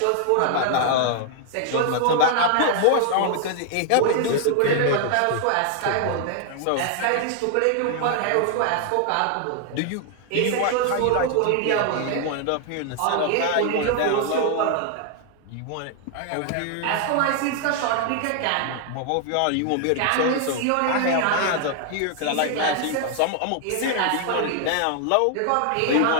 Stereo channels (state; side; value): different; both; correlation 0.00